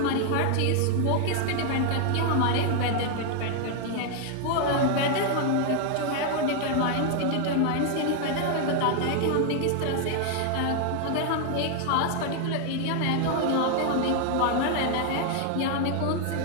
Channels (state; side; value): different; both; correlation 0.00